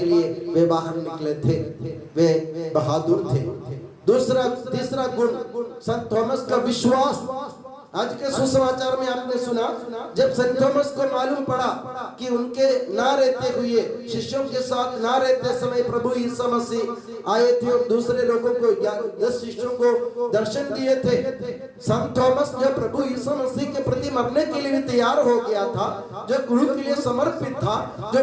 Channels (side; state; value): both; identical; correlation 1.00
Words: लिए वे बाहर निकले थे। वे बहादुर थे। तीसरा गुण संत थॉमस का विश्वास। आज के सुसमाचार में आपने सुना, जब संत थॉमस को मालूम पड़ा कि उनके ना रहते हुए, शिष्यों के साथ ना रहते समय प्रभु यीशु मसीह आए थे और दूसरे लोगों को 10 शिष्यों को दर्शन दिए थे। संत थॉमस जो प्रभु यीशु मसीह के प्रति मरने के लिए तैयार हो गया था, जो गुरु के लिए समर्पित था, जो